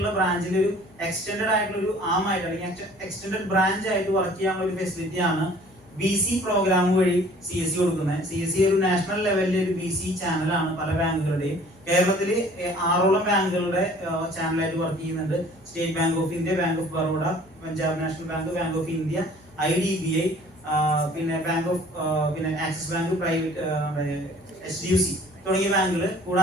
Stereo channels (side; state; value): left; noise; hum, 27 dB below the sound